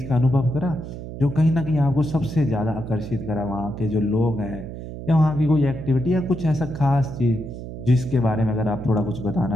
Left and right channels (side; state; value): right; noise; hum, 10 dB below the sound